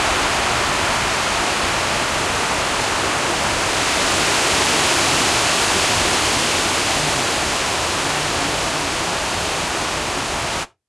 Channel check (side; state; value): both; identical; correlation 1.00